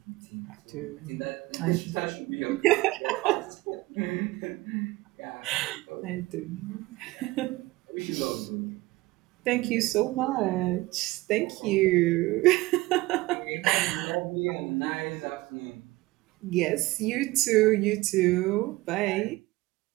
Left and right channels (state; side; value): quieter; left; 20.1 dB